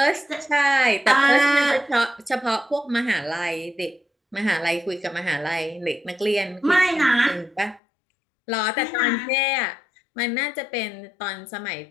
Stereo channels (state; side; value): drops out; right; at 7.8 s